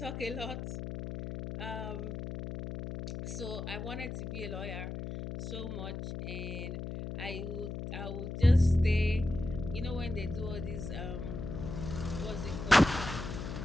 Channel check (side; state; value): left; noise; hum, 6 dB below the sound